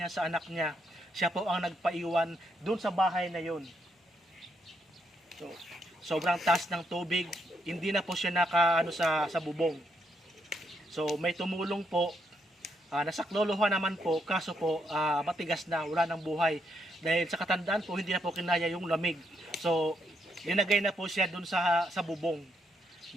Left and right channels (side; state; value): both; normal; correlation 0.76